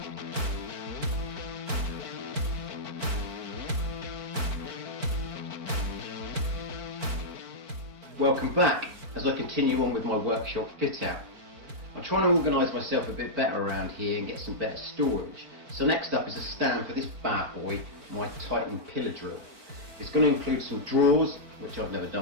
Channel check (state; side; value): late; left; 4.5 ms